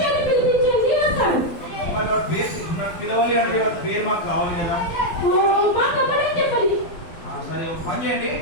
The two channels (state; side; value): late; right; 12 ms